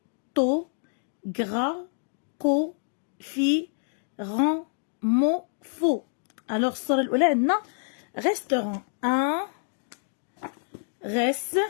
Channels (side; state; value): right; silent; digital silence